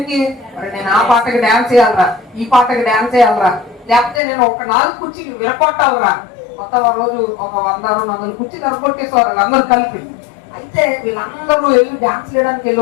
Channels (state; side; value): drops out; right; at 4.2 s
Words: మరి నేను ఆ పాటకి డాన్స్ చేయాలరా, ఈ పాటకి డాన్స్ చేయాలరా, లేకపోతే నేను ఒక 4 కుర్చీలు విరగొట్టాలరా. కొత్త రోజు ఒక 100-200 కుర్చీలు విరగొట్టేసేవారు అందరూ కలిపి. అయితే వీళ్ళందరూ వెళ్ళి డాన్స్ చేయడానికి